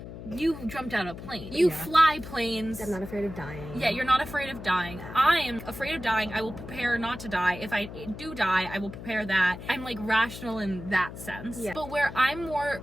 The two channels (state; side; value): noise; left; hum, 11 dB below the sound